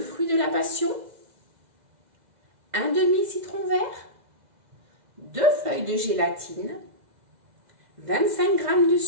de la passion, un demi citron vert, 2 feuilles de gélatine, 25 g de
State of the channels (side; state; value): left; late; 2.0 ms